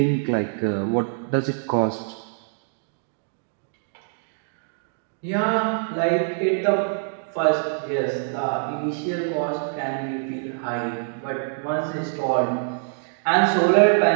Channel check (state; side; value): silent; left; digital silence